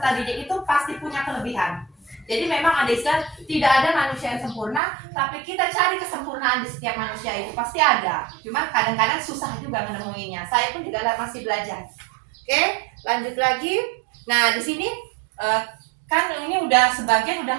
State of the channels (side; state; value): left; drops out; at 4.8 s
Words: didik itu pasti punya kelebihan. Jadi memang ada istilah tidak ada manusia yang sempurna, tapi kita cari kesempurnaan di setiap manusia itu pasti ada. Cuma kadang-kadang susah juga menemuinya. Saya pun juga masih belajar. Oke, lanjut lagi. Nah, di sini kan ini sebagian udah